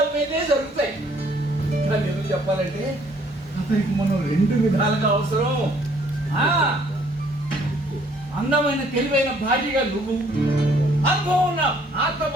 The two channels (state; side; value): normal; both; correlation 0.62